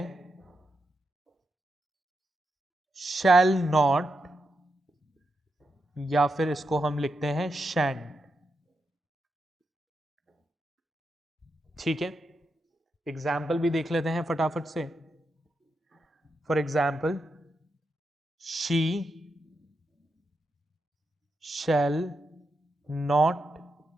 shall not या फिर इसको हम लिखते हैं शैंड। ठीक है, एग्जाम्पल भी देख लेते हैं फटाफट से। For example, she shall not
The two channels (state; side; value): normal; both; correlation 0.85